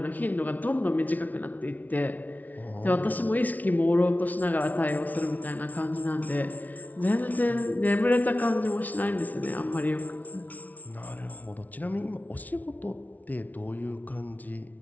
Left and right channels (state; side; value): late; right; 0.075 ms